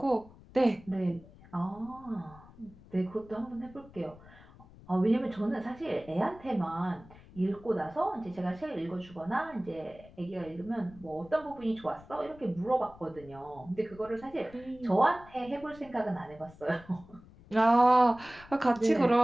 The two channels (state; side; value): noise; left; rumble, 22 dB below the sound